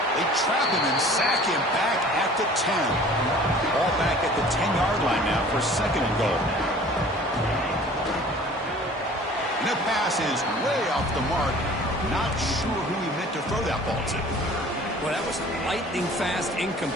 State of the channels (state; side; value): normal; both; correlation 0.47